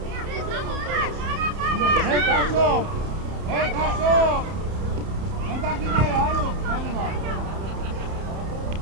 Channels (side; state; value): left; late; 31 ms